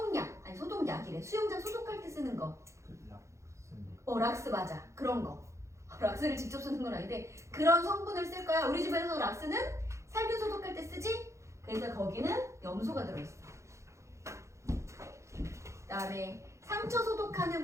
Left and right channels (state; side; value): late; left; 0.14 ms